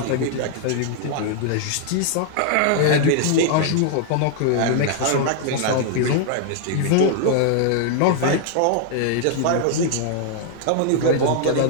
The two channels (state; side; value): different; both; correlation 0.00